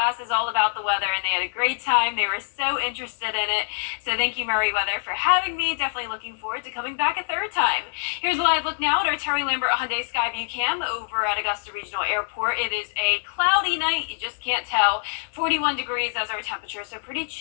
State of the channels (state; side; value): silent; right; 57 dB below the other